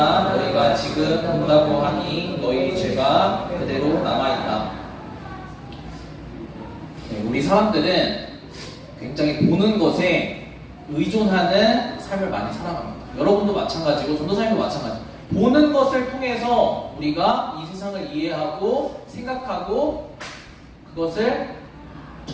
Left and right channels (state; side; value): identical; both; correlation 1.00